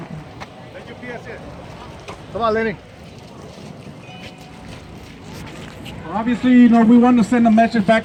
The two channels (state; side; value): identical; both; correlation 1.00